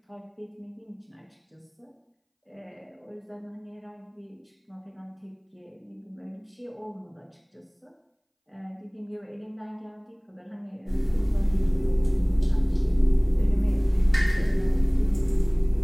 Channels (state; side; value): identical; both; correlation 1.00